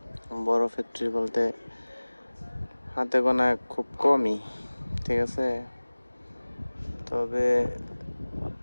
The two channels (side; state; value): both; inverted; correlation -1.00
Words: বড় ফ্যাক্টরি বলতে হাতে গোনা খুব কমই, ঠিক আছে। তবে